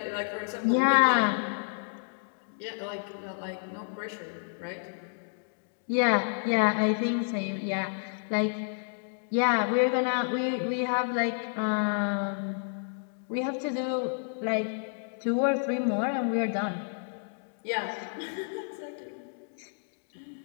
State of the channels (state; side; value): silent; right; digital silence